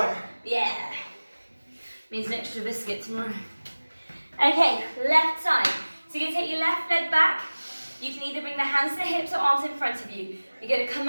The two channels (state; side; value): inverted; both; correlation -1.00